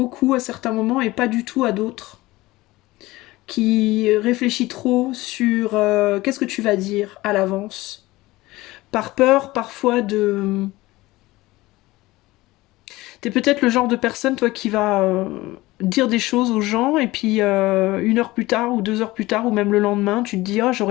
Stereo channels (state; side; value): quieter; right; 19.2 dB